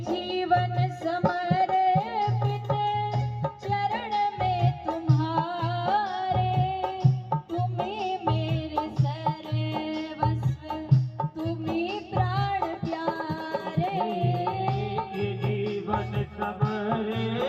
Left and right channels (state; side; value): identical; both; correlation 1.00